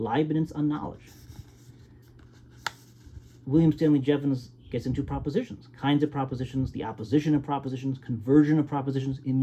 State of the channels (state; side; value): identical; both; correlation 1.00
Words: on knowledge. William Stanley Jevons gets into propositions, kinds of propositions, the opposition of propositions, conversion of propositions,